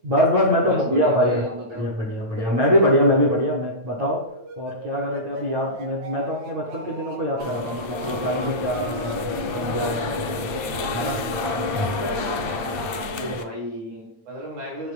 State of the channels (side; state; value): left; late; 8.7 ms